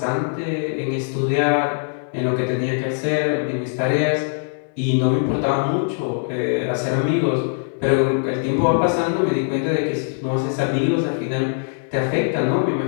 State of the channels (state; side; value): silent; right; digital silence